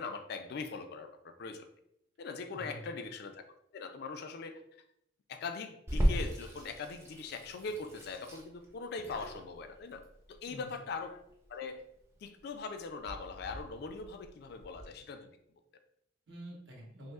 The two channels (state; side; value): normal; both; correlation 0.54